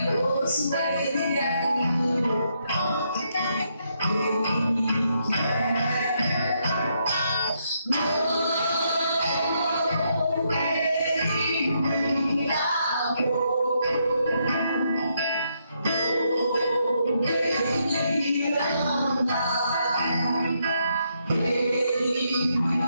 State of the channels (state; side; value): inverted; both; correlation -0.77